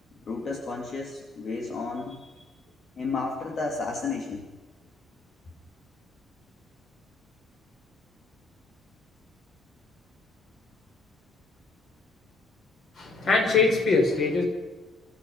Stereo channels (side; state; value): right; quieter; 3.4 dB